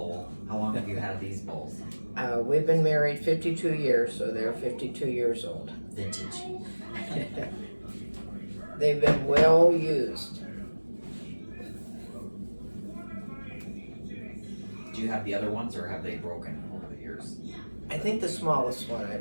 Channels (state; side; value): inverted; both; correlation -1.00